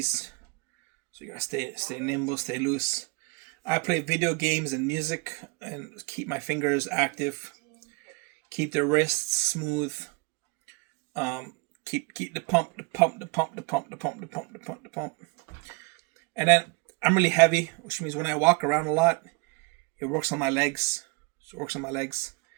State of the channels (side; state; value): left; quieter; 28.4 dB